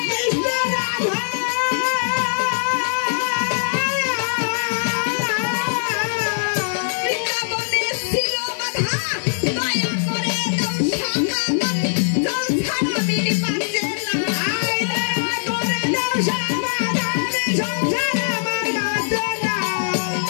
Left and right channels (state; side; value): silent; right; digital silence